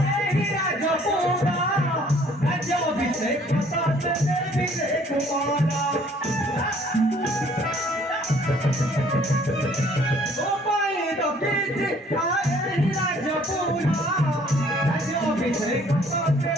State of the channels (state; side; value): normal; both; correlation 0.58